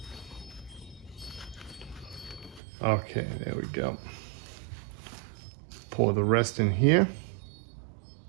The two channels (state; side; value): drops out; left; at 2.6 s